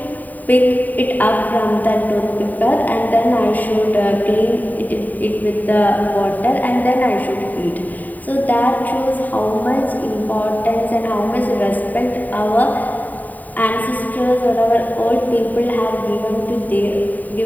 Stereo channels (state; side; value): late; right; 0.082 ms